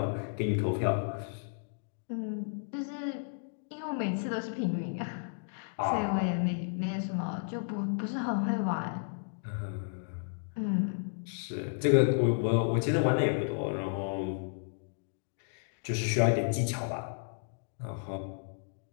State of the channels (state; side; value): silent; right; digital silence